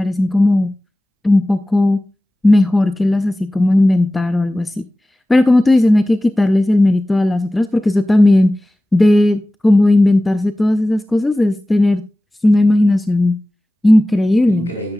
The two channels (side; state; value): both; normal; correlation 0.97